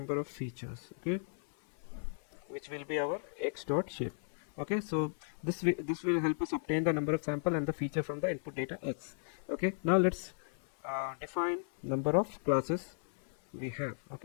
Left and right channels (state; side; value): silent; right; 54 dB below the other